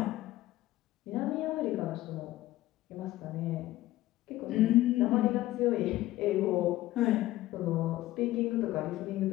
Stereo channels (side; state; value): right; quieter; 16.0 dB